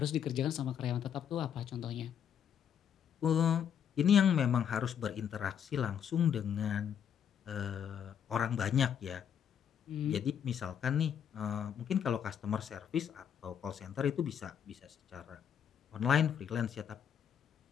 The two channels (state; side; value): quieter; right; 8.5 dB